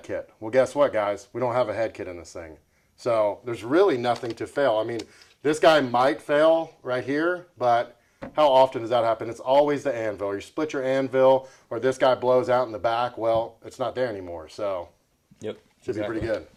kit. Well, guess what, guys? We don't have a head kit in this thing. So there's really nothing to fail. I mean, this guy might fail right here, but how often does that happen? It's always the anvil. You split your anvil, or this guy blows out in the back. Well, it's not there anymore. So should be pretty good.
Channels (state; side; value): identical; both; correlation 1.00